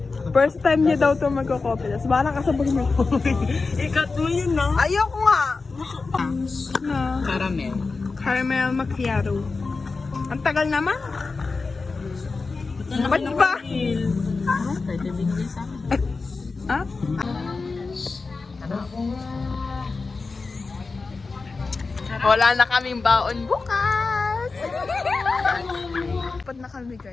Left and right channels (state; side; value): quieter; right; 4.1 dB